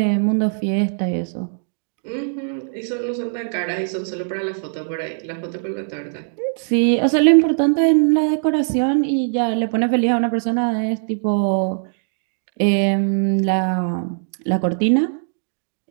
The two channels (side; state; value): left; silent; digital silence